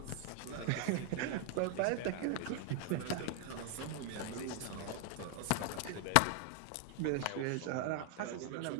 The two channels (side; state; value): both; different; correlation 0.00